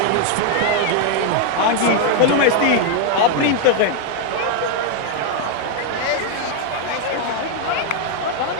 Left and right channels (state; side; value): different; both; correlation 0.01